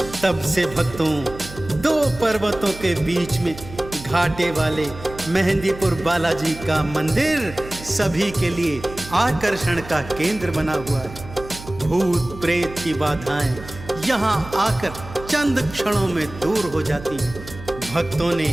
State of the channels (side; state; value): right; noise; hum, 15 dB below the sound